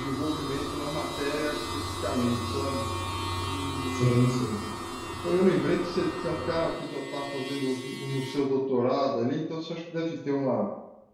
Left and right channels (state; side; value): identical; both; correlation 1.00